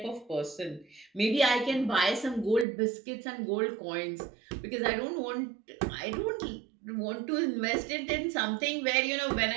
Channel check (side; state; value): left; drops out; at 2.7 s